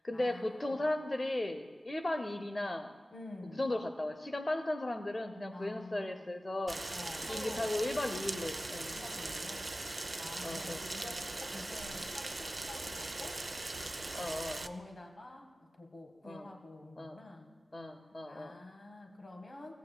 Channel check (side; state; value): both; normal; correlation 0.96